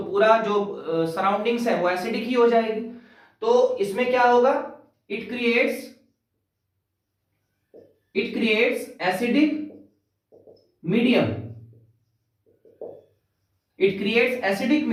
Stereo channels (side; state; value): both; identical; correlation 1.00